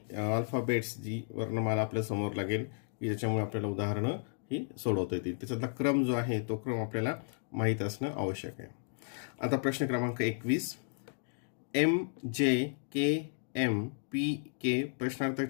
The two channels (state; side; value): silent; right; digital silence